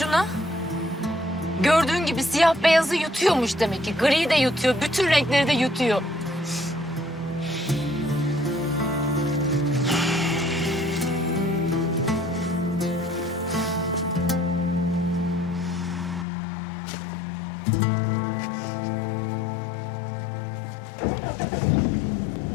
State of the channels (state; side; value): drops out; right; at 16.2 s